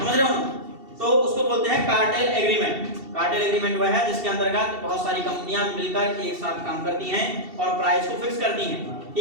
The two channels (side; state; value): left; late; 2.7 ms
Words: रहे हो ना? तो उसको बोलते हैं कार्टेल एग्रीमेंट। कार्टेल एग्रीमेंट वह है जिसके अंतर्गत बहुत सारी कंपनियां मिलकर एक साथ काम करती हैं और प्राइस को फिक्स करती हैं।